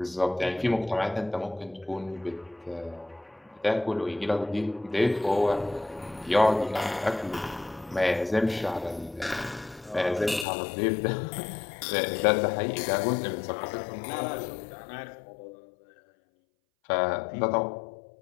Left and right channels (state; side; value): drops out; right; at 10.5 s